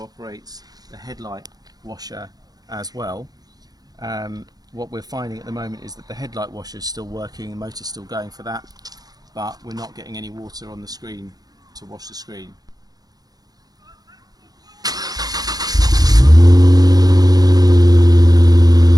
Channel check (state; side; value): late; left; 0.19 ms